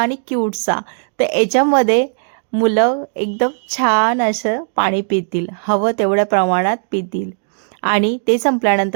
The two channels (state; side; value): silent; left; digital silence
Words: क्यूटसा. तर याच्यामध्ये मुलं एकदम छान असं पाणी पितील, हवं तेवढ्या प्रमाणात पितील आणि ते